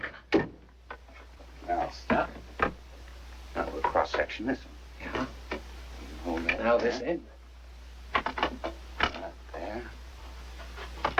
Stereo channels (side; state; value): both; identical; correlation 1.00